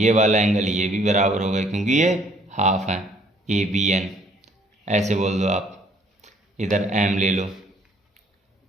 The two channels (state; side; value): normal; both; correlation 0.61